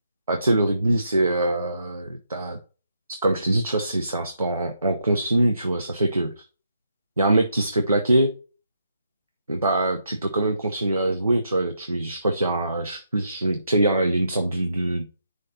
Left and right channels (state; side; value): inverted; both; correlation -0.78